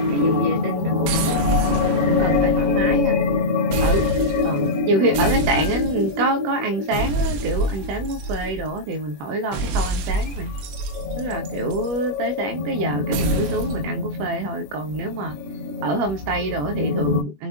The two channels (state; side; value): late; left; 21 ms